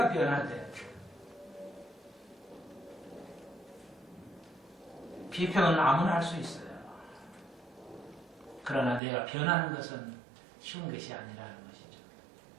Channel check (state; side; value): drops out; left; at 9.0 s